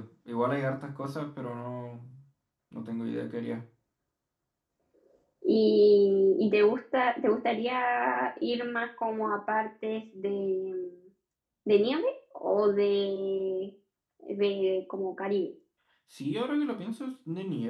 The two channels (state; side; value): identical; both; correlation 1.00